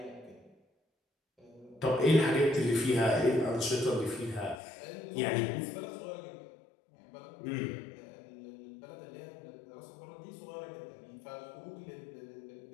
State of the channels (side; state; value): right; drops out; at 4.6 s